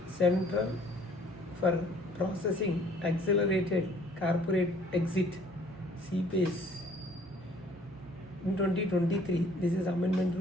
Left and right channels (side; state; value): both; normal; correlation 0.57